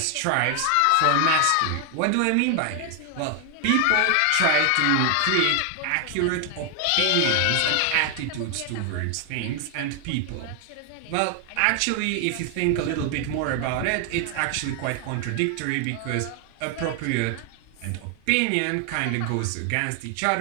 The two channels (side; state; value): both; different; correlation 0.00